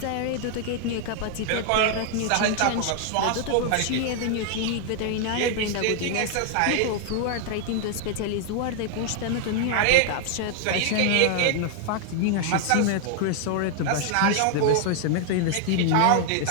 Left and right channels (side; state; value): both; different; correlation 0.00